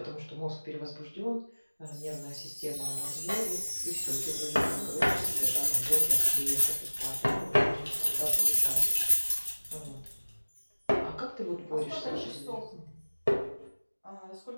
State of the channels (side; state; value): both; inverted; correlation -1.00